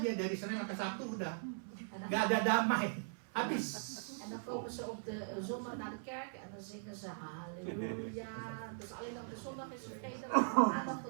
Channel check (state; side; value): silent; left; 51 dB below the other